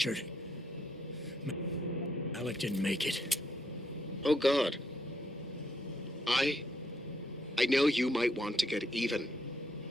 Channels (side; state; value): both; normal; correlation 0.74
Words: Alec didn't make it. Oh, God. I know you might want to get even.